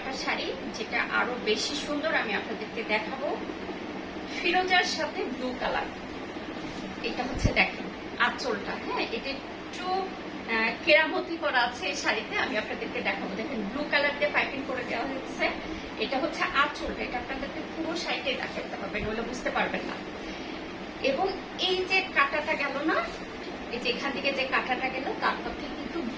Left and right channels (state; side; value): identical; both; correlation 1.00